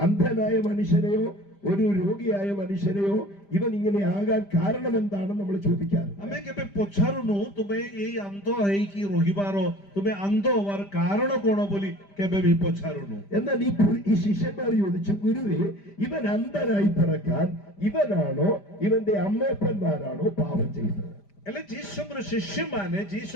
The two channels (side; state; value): right; late; 5.1 ms